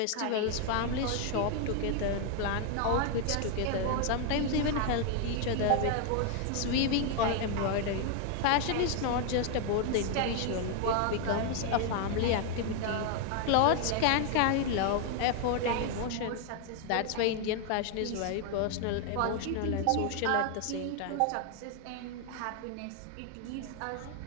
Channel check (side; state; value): both; different; correlation 0.00